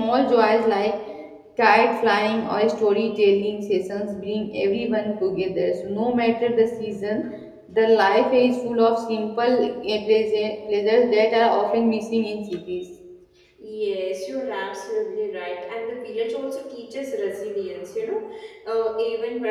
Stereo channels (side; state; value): both; identical; correlation 1.00